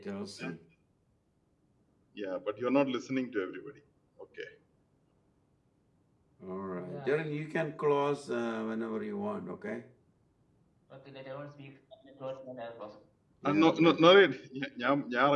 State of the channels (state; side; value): identical; both; correlation 1.00